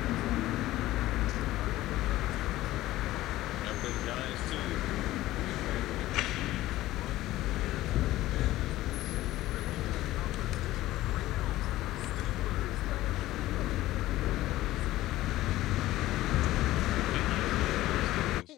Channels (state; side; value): quieter; right; 16.0 dB